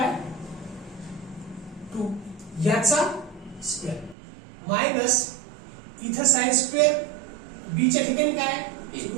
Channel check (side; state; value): left; drops out; at 4.2 s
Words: याचा स्क्वेअर मायनस इथं sin स्क्वेअर b च्या ठिकाणी काय आहे?